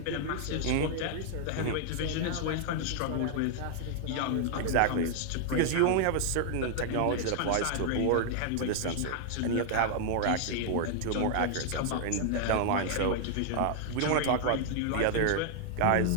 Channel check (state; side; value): different; both; correlation 0.00